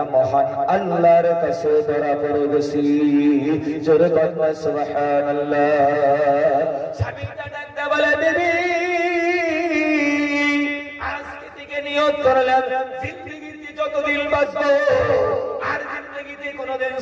মহান আল্লাহর কাছে ধরা পড়ে গেছি। জোরে বলবা সুবহানাল্লাহ। স্বামী ডাকতে বলে, বিবি আজকে থেকে নিয়ত করলাম জিন্দেগিতে যতদিন বাঁচবো আর জিন্দেগিতে কোনোদিন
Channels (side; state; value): both; identical; correlation 1.00